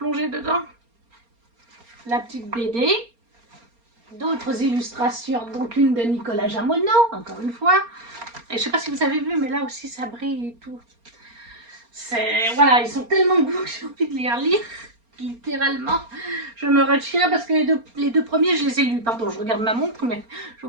dedans. La petite BD. D'autres illustrations, donc une de Nicolas Jamono, encore une fois. Et je ne sais pas si vous avez vu, mais là aussi ça brille et tout. Voilà, ils sont tellement beaux que j'ai envie de les relire. Littéralement, je me retiens parce que les deux premiers, je les ai lus. Pardon, je regarde ma montre, mais je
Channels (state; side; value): late; left; 4.3 ms